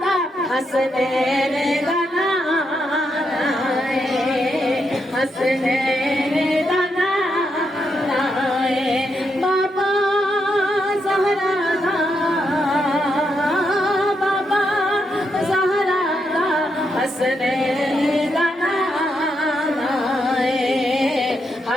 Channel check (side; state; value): both; normal; correlation 0.81